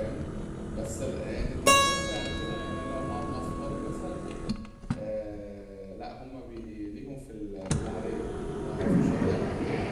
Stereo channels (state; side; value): identical; both; correlation 1.00